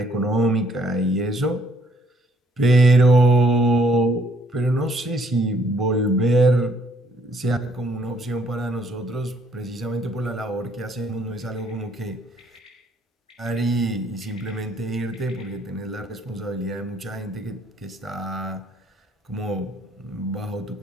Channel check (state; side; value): normal; both; correlation 0.65